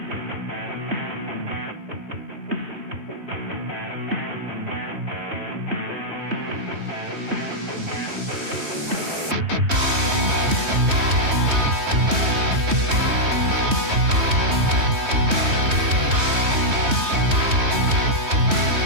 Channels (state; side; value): late; left; 3.2 ms